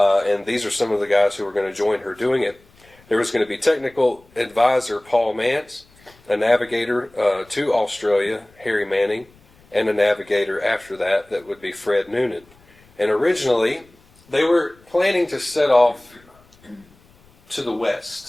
these are some of the guys who were going to join her doing it. There was going to be technical advisor Paul Mance, a navigator to Australia, Harry Manning, and a navigator after that would be Fred Noonan. And originally, they were planning to set off to the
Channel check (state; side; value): noise; left; rumble, 29 dB below the sound